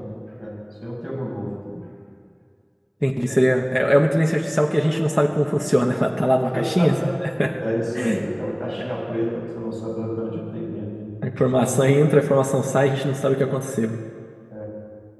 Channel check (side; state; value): both; identical; correlation 1.00